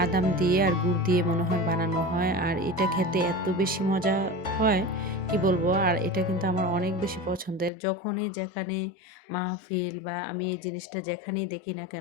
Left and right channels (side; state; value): right; drops out; at 7.7 s